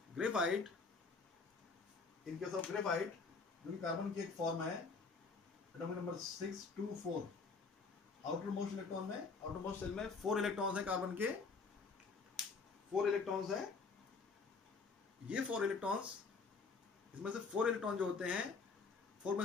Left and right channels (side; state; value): right; quieter; 4.5 dB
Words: graphite, जो कि कार्बन की एक फॉर्म है, atomic number 624, outer most electron में, आउटर मोस्ट सेल में 4 इलेक्ट्रॉन्स हैं कार्बन के, 4 इलेक्ट्रॉन्स हैं। ये 4 इलेक्ट्रॉन्स, इसमें से 4 इलेक्ट्रॉन जो होते हैं, 4 में